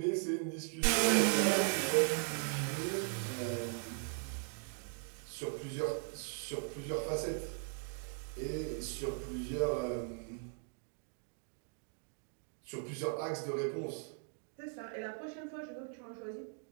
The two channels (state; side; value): silent; left; 52 dB below the other